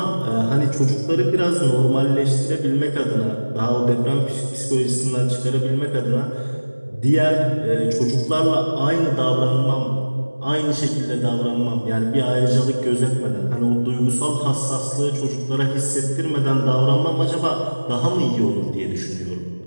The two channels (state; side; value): inverted; both; correlation -1.00